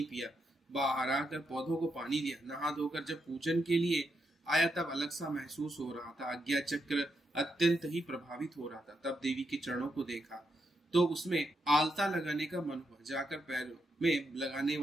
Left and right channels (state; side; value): normal; both; correlation 0.82